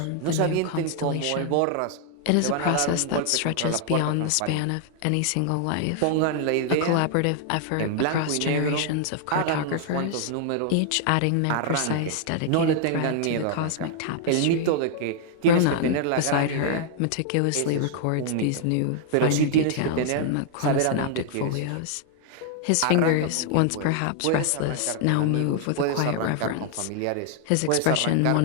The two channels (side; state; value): both; different; correlation 0.00